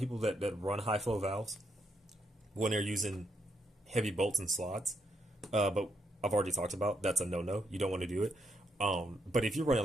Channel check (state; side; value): normal; both; correlation 0.77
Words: that run high flow valves when they're using heavy bolts and slots, but I've already talked about that's a no-no. You don't want to do it. But if you're